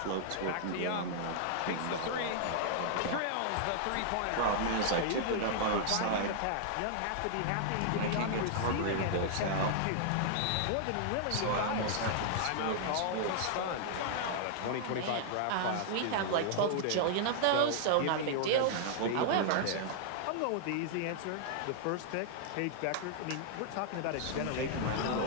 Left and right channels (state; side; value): different; both; correlation -0.01